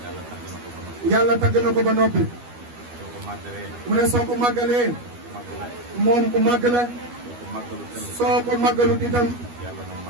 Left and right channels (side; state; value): left; late; 12 ms